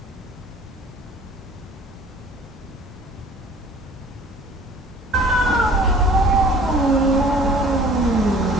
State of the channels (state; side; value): normal; both; correlation 0.50